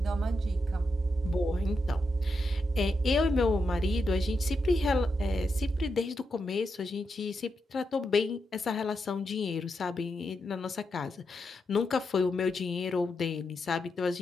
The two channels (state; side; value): normal; both; correlation 0.85